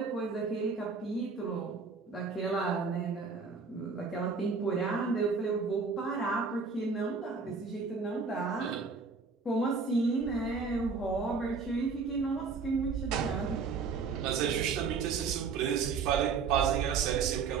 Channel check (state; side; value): quieter; left; 5.0 dB